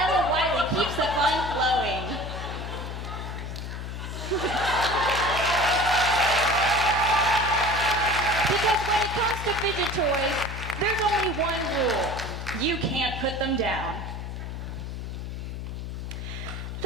Wiley keeps the fun flowing. Because when it comes to fidget toys, there's only one rule. You can't put them down.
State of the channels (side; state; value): left; noise; hum, 7 dB below the sound